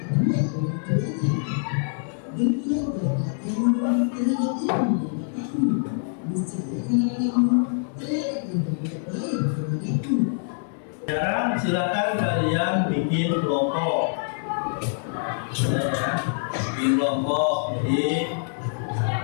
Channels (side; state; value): right; silent; digital silence